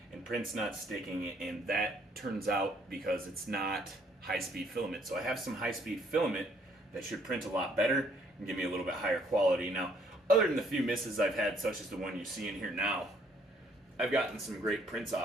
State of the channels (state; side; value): normal; both; correlation 0.65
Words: and prints not sticking, and that turns out because it's not high-speed filament. So I have some high-speed filament that should print a lot better and give me a little bit higher quality. Now, other than the few misses I've had, such as the one you see in here now, I've gotten some great prints